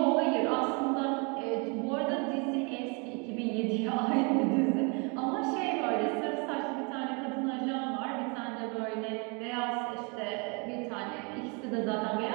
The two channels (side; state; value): left; quieter; 32.9 dB